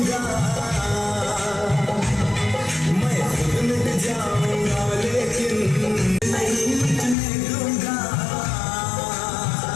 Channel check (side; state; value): right; drops out; at 7.2 s